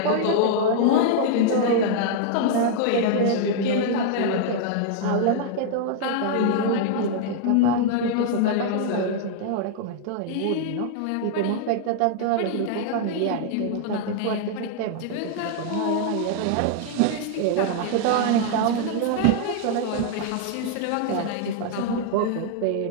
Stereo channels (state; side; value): different; both; correlation -0.01